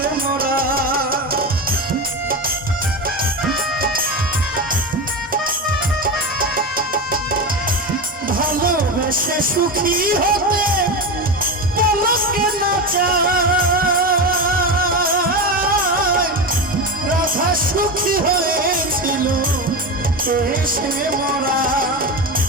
মোরা ভালোবেসে সুখী হতে পলকে না চায় রাধা সুখী হয়েছিল এসে মোরা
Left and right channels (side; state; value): both; normal; correlation 0.19